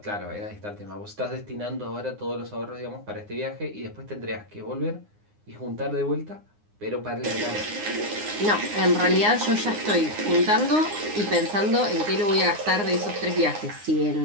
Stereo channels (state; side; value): late; left; 9.7 ms